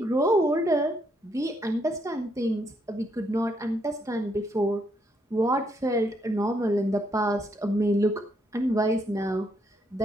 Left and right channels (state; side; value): normal; both; correlation 0.75